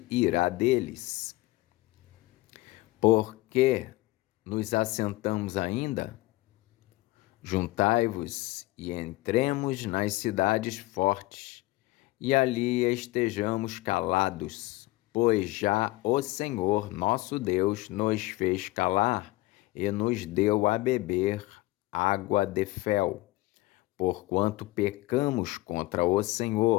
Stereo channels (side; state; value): right; quieter; 19.5 dB